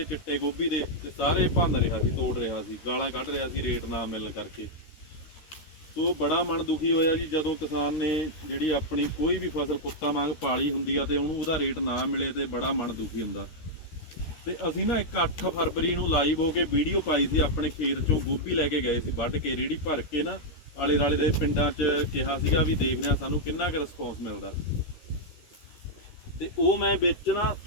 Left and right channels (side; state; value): right; late; 13 ms